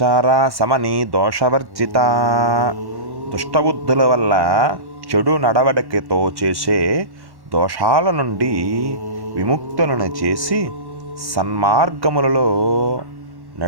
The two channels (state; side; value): late; left; 1.1 ms